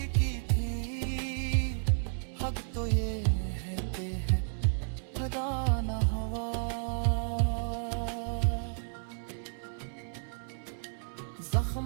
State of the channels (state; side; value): silent; left; 56 dB below the other